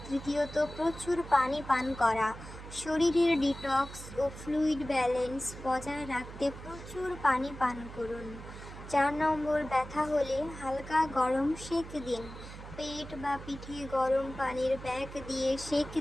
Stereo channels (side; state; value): right; noise; hum, 13 dB below the sound